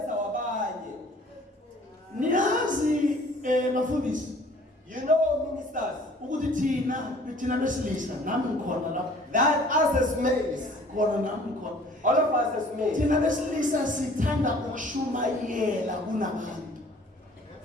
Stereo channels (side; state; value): both; normal; correlation 0.53